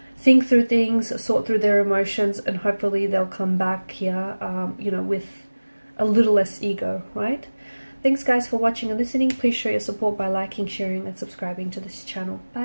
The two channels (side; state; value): both; inverted; correlation -1.00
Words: think through things, sort through their emotions, and hopefully they'll come back here, with a little less ego, right? Thanks guys for watching and listening. Please show your support by liking, sharing, and subscribing to this channel.